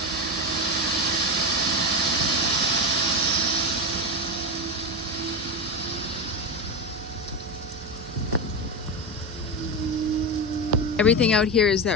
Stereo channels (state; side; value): normal; both; correlation 0.17